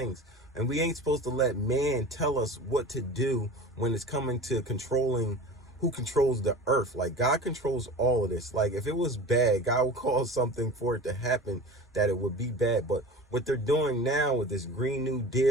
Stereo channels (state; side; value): normal; both; correlation 0.36